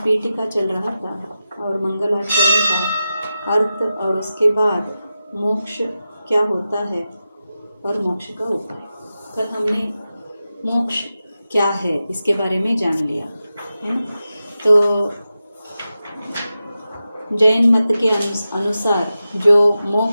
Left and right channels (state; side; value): inverted; both; correlation -0.92